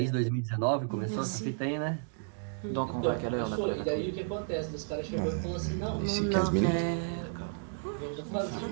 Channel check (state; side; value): silent; left; digital silence